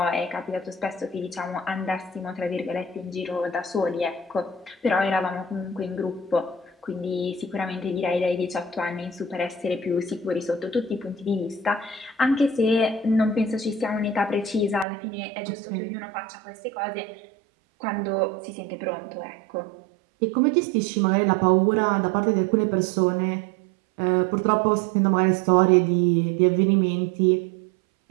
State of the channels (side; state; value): left; drops out; at 14.9 s